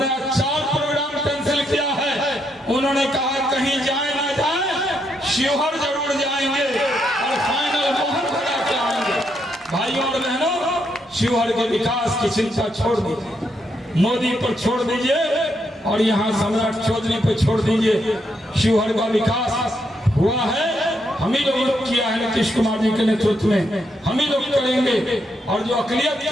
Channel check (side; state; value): both; normal; correlation 0.78